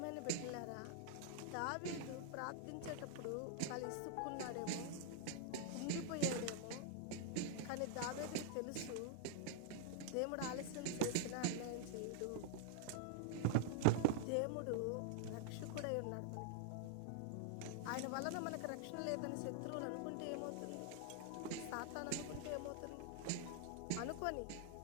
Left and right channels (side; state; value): both; different; correlation 0.00